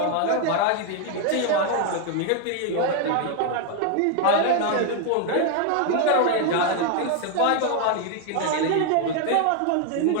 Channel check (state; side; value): different; both; correlation 0.01